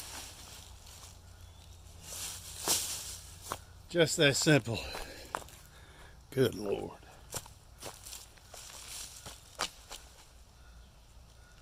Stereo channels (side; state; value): both; identical; correlation 1.00